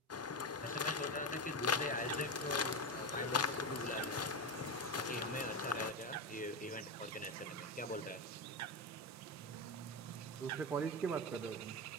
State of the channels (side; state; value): both; normal; correlation 0.15